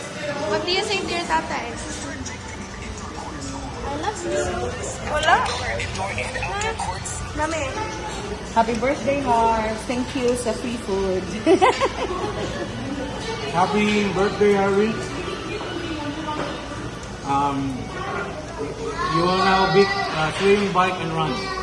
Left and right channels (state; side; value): identical; both; correlation 1.00